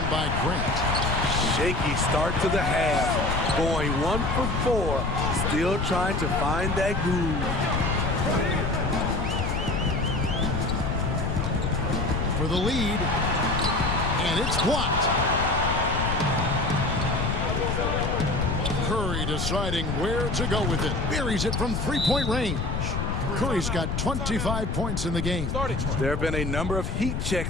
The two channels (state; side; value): noise; left; rumble, 1 dB below the sound